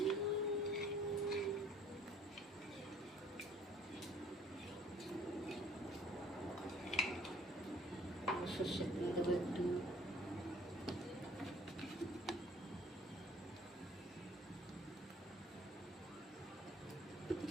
সর্ষের তেল দেবো একটু,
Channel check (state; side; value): normal; both; correlation 0.56